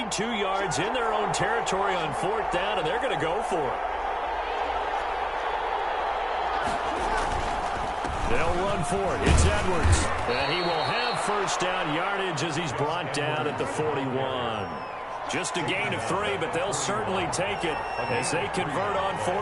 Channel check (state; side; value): identical; both; correlation 1.00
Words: 2 yards in their own territory on 4th down, and they're going to go for it. They'll run for it. It's Edwards. And he will have 1st down yardage as he's brought down at the 41. Just a gain of 3, but they'll certainly take it as they convert on